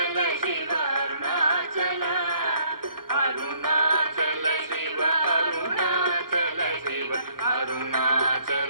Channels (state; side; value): late; left; 0.93 ms